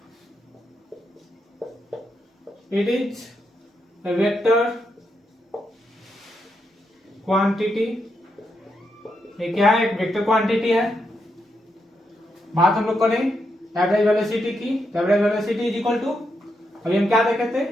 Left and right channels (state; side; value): normal; both; correlation 0.82